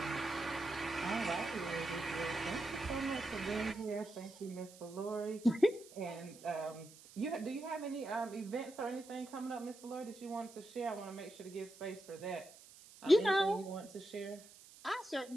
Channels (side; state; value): right; noise; hiss, 20 dB below the sound